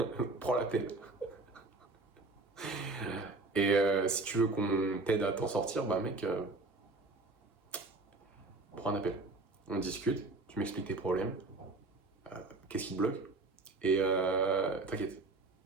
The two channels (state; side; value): quieter; left; 3.3 dB